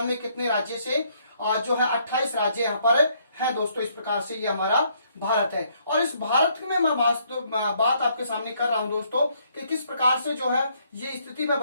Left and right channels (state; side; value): inverted; both; correlation -0.69